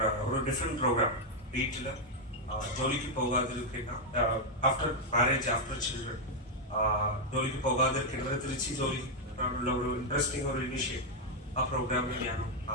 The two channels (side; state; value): both; normal; correlation 0.01